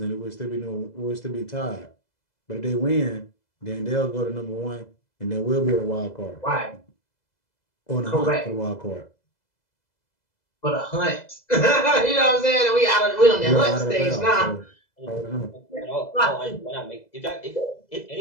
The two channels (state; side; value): late; right; 2.0 ms